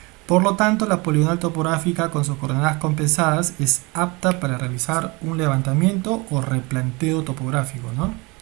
Por lo tanto, la poligonal topográfica con sus coordenadas compensadas es apta para realizar un levantamiento o replanteo topográfico, ¿no?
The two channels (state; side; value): quieter; left; 26.4 dB